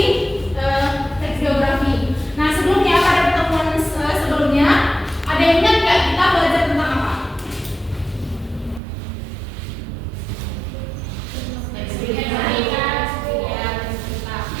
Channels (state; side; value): drops out; left; at 8.8 s